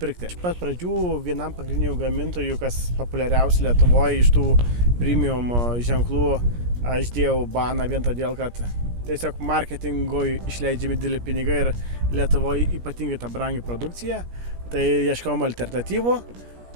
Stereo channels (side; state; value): left; late; 17 ms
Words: Iš pat pradžių vienam pagrindinių gamintojų, kas populiariausi Lietuvoje iš tų premium ženklų, aš dėjau baną vien todėl, kad tiesiog marketingui išleidžiami dideli pinigai ir Lietuvoje ypatingai ta brangi produkcija. Tai ieškojom alternatyvų